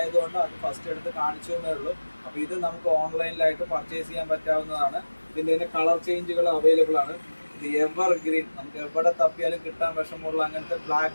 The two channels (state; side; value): inverted; both; correlation -1.00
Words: അത് ഫസ്റ്റ് എടുത്ത് കാണിച്ചു എന്നേ ഉള്ളൂ. അപ്പോൾ ഇത് നമുക്ക് ഓൺലൈനിലായിട്ട് പർച്ചേസ് ചെയ്യാൻ പറ്റാവുന്നതാണ്. ഇതിൻ്റെ കളർ ചേഞ്ചുകൾ അവൈലബിൾ ആണ്. എവർ ഗ്രീൻ, നമുക്ക് എവിടെ തപ്പിയാലും കിട്ടാൻ വിഷമമുള്ള അങ്ങനത്തെ